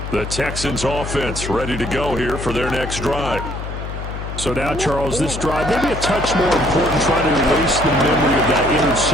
The Texans offense ready to go here for their next drive. So now, Charles, this drive maybe a touch more important, trying to erase the memory of that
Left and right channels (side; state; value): left; noise; hum, 7 dB below the sound